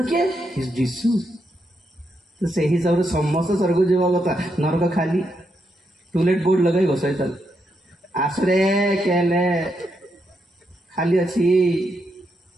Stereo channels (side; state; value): both; normal; correlation 0.81